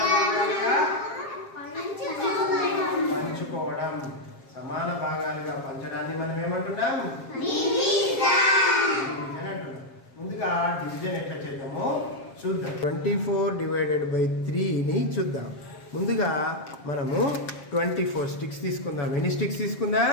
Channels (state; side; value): late; right; 7.4 ms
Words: భాగాలుగా పంచుకోవడం. సమాన భాగాలుగా పంచడాన్ని మనం ఏమంటున్నాం? డివిజన్ అంటున్నాం. ముందుగా డివిజన్ ఎట్లా చేద్దామో చూద్దాం. 24/3ని చూద్దాం. ముందుగా మనము 24 స్టిక్స్ తీసుకుందాం. ఎన్ని స్టిక్స్